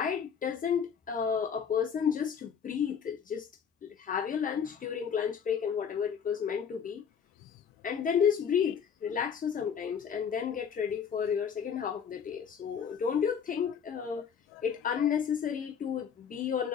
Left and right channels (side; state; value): right; quieter; 7.3 dB